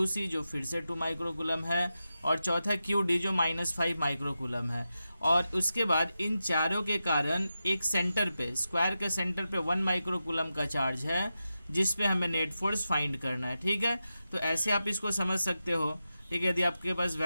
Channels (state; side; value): inverted; both; correlation -0.91